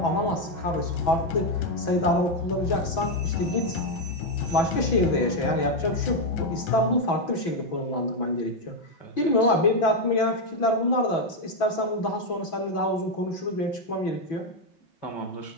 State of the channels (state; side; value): late; right; 6.0 ms